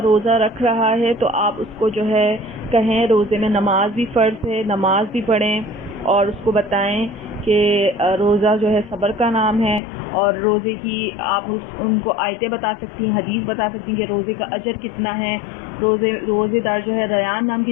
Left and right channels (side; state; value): right; drops out; at 9.8 s